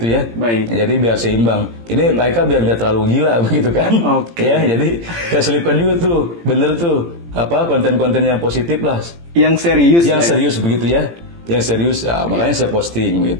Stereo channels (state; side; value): late; left; 18 ms